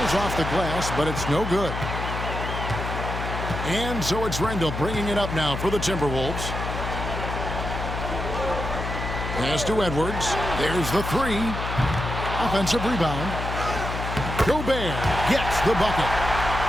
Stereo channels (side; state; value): left; noise; hum, 5 dB below the sound